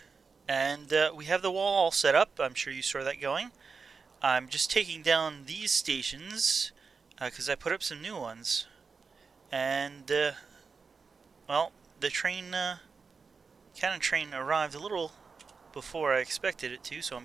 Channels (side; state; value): left; quieter; 5.0 dB